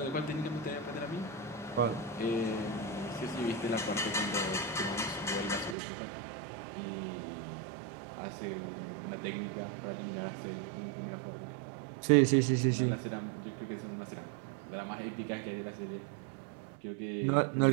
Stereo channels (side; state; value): left; drops out; at 5.8 s